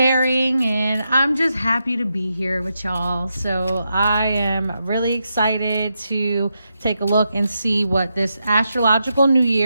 And I'm just happy to be here with y'all. So I am really excited to take a look and see what this astrological new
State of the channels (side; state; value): both; inverted; correlation -0.85